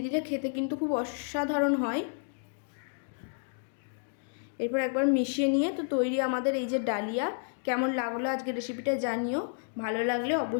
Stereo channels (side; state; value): right; silent; 57 dB below the other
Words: দিলে খেতে কিন্তু খুব অসাধারণ হয়। এরপর একবার মিশিয়ে নিয়ে তো তৈরি আমাদের এই যে ডালিয়া। কেমন লাগলো আজকে রেসিপিটা জানিও, ভালো লাগলে